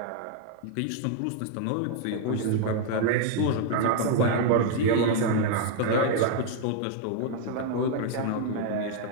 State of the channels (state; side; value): different; both; correlation 0.00